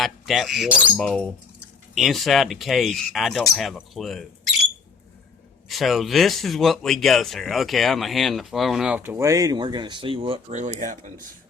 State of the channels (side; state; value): right; quieter; 5.3 dB